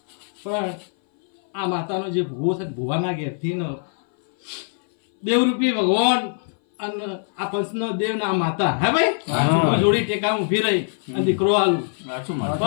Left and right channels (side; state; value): right; silent; 60 dB below the other